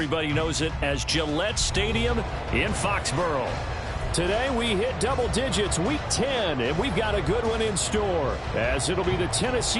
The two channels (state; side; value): identical; both; correlation 1.00